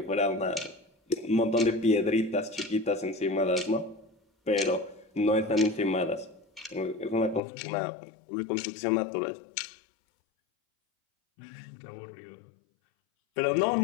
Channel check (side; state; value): right; drops out; at 7.4 s